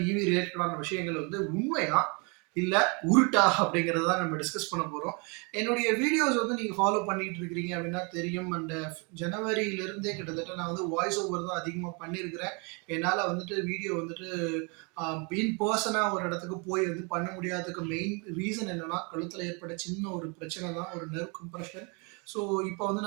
இவி ரிலேட்டடான விஷயங்கள் வந்து உண்மையா இல்லை உருட்டா அப்படிங்கிறத தான் நம்ம டிஸ்கஸ் பண்ண போகிறோம். என்னுடைய வீடியோஸ் வந்து நீங்கள் ஃபாலோ பண்ணிட்டு இருக்கிறீங்க அப்படின்னா தெரியும். அண்ட் ஜனவரியிலிருந்தே கிட்டத்தட்ட நான் வந்து வாய்ஸ் ஓவர் தான் அதிகமாக பண்ணியிருக்கிறேன். என்னால் வந்துட்டு வீடியோ வந்துட்டு இன் பர்சனாக ஒரு இடத்துக்கு போய் வந்து பண்ண முடியாததுக்கு மெயின் ரீசன் என்னன்னா, கழுத்தில் ஏற்பட்ட சின்ன ஒரு பிரச்சனை தான், ஒரு நெர்வ் கம்ப்ரெஷன். ஸோ இப்போ வந்து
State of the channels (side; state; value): left; quieter; 32.6 dB